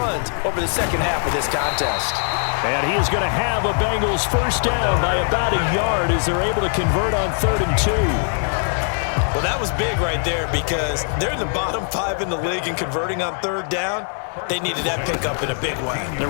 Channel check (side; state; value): right; silent; digital silence